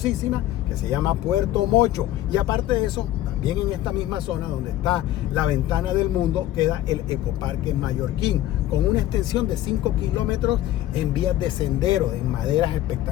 que se llama Puerto Mocho, y aparte de eso, también en esta misma zona donde está la Ventana del Mundo, queda el Ecoparque Mallorquín, con una extensión de 5 kilómetros en vías de sendero, en maderas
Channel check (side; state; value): right; quieter; 13.8 dB